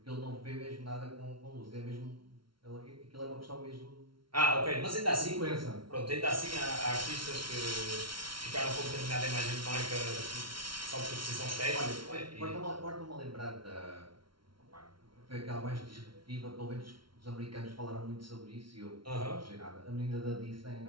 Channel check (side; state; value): left; late; 0.74 ms